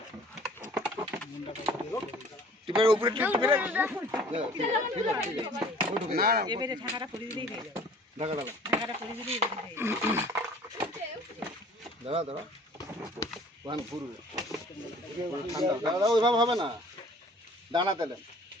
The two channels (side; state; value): both; normal; correlation 0.51